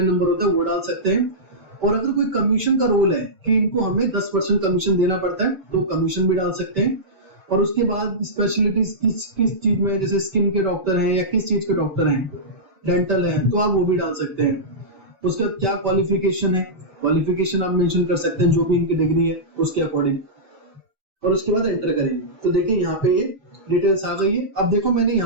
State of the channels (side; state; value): left; late; 5.2 ms